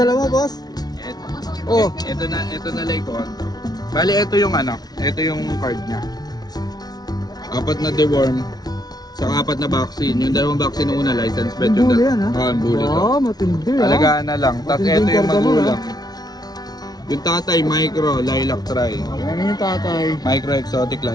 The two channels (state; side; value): late; right; 0.19 ms